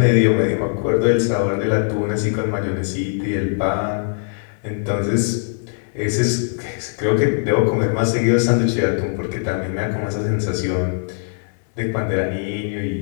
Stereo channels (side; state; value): right; silent; 61 dB below the other